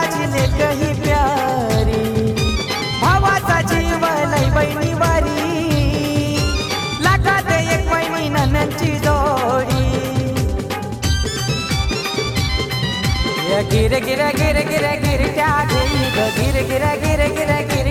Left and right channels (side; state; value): both; identical; correlation 1.00